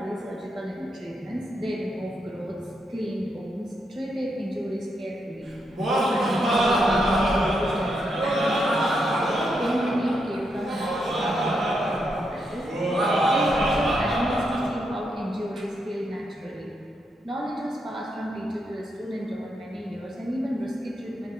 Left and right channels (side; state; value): both; normal; correlation 0.81